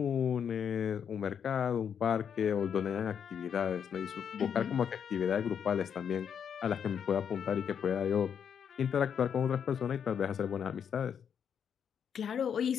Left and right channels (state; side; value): quieter; right; 7.8 dB